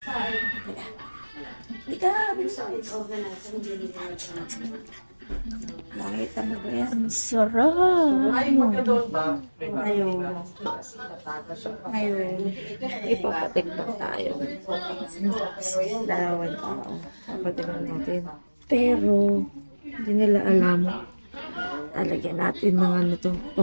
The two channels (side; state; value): both; inverted; correlation -1.00